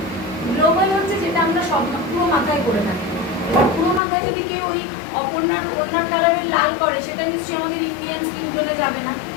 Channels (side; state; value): right; drops out; at 4.0 s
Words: গ্লোবাল হচ্ছে যেটা আমরা সব পুরো মাথায় করে থাকি। এবার পুরো মাথায় যদি কেউ ওই ওনার কালারের লাল করে, সেটা নিশ্চয়ই আমাদের ইন্ডিয়ান স্কিন টোনে যাবে না,